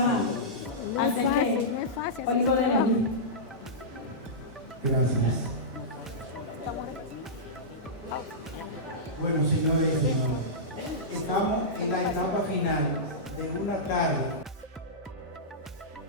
No es fácil, no es fácil. Olivo de León. Gracias. Bueno, señores y señores, estamos en la etapa final de una tarde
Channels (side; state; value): both; normal; correlation -0.15